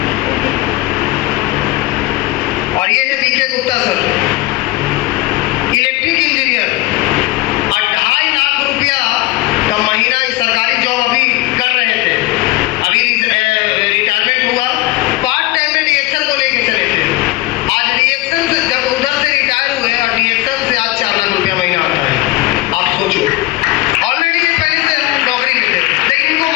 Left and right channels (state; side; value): quieter; right; 18.8 dB